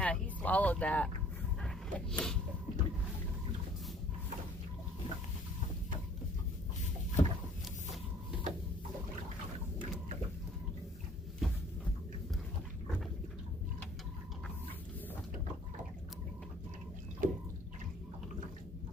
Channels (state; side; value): normal; both; correlation 0.56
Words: he swallowed that.